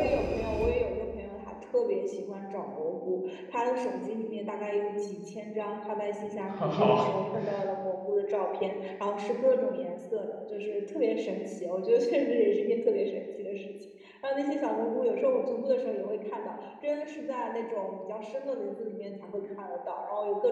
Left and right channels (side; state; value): both; identical; correlation 1.00